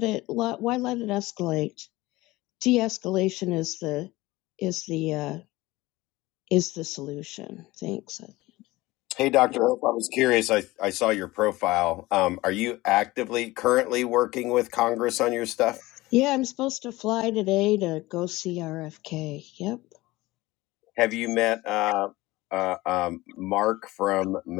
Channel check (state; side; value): quieter; right; 19.5 dB